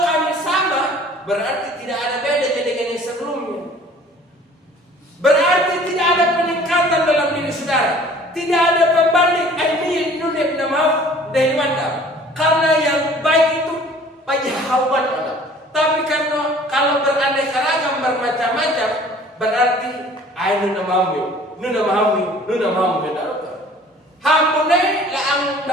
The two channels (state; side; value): normal; both; correlation 0.50